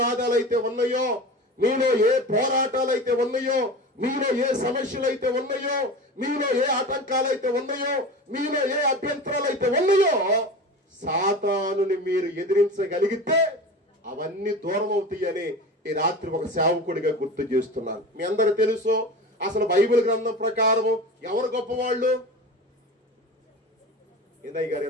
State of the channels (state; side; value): normal; both; correlation 0.32